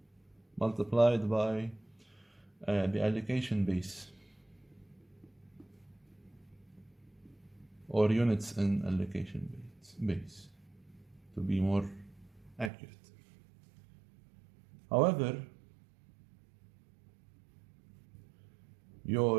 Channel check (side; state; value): left; drops out; at 12.7 s